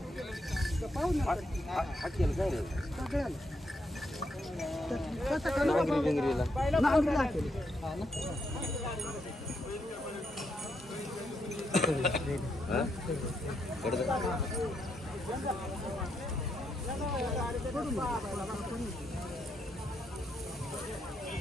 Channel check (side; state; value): both; normal; correlation 0.79